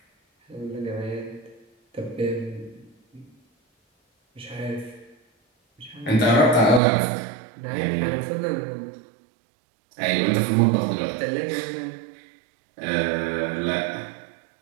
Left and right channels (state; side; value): drops out; left; at 6.8 s